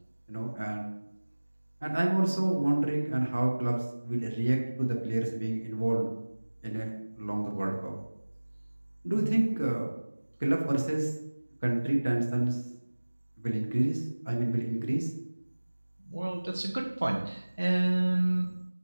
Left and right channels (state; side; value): inverted; both; correlation -1.00